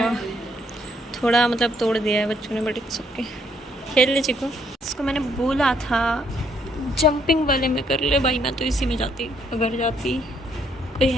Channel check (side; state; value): both; normal; correlation 0.69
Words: थोड़ा मतलब तोड़ दिया है बच्चों ने, बट इट्स ओके, खेल ले चिको। इसको मैंने बोला था जंपिंग वाले में कर ले भाई, मैं तो इसी में जाती, अगर जाती कोई